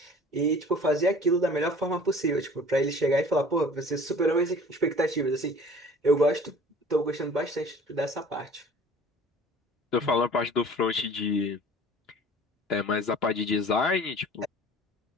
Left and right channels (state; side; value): normal; both; correlation 0.47